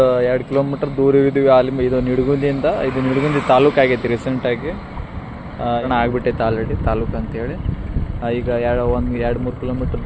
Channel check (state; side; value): identical; both; correlation 1.00